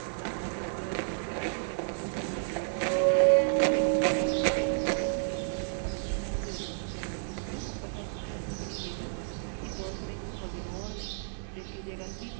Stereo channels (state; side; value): silent; left; digital silence